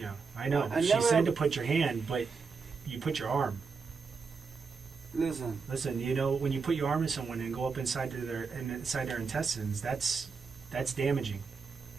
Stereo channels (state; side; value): quieter; left; 5.1 dB